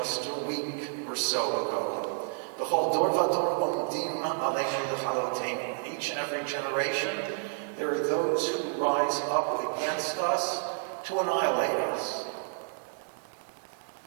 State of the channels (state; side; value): silent; left; digital silence